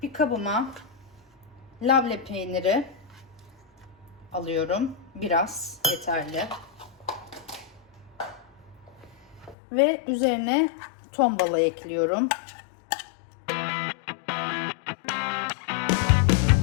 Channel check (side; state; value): right; drops out; at 9.6 s